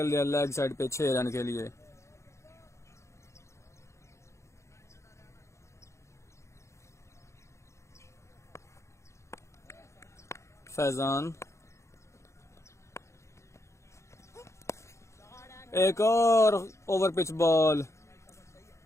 दिया लेग साइड पे 6 रन के लिए। फैजान एक और ओवर पिच बॉल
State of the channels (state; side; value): late; right; 0.14 ms